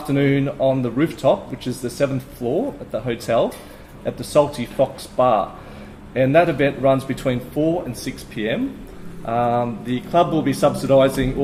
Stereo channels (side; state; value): both; identical; correlation 1.00